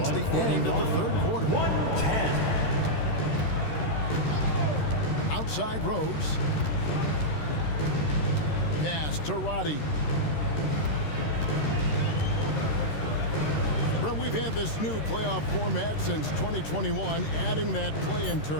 the end of the third quarter. 110. Outside Rose. Pass to Roddy. Well, we've had this new playoff format since 2021, adding that play-in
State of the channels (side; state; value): right; late; 13 ms